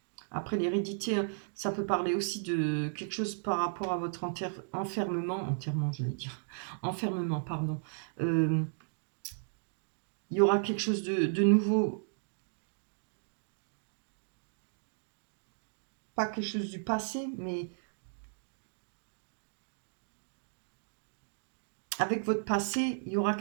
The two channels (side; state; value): left; silent; digital silence